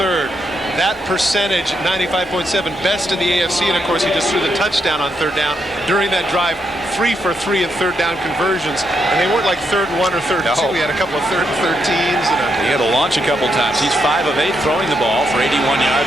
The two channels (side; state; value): both; normal; correlation 0.79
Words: That percentage, 95.7, best in the AFC, and of course he just threw the touchdown on 3rd down during that drive. 3 for 3 in 3rd down conversions, and they weren't like 3rd and 1 or 3rd and 2. He had a couple of 3rd and 13s. He had to launch a couple times. He's 5 of 8 throwing the ball for 81